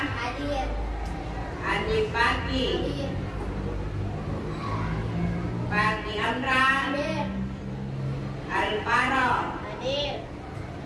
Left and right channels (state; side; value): identical; both; correlation 1.00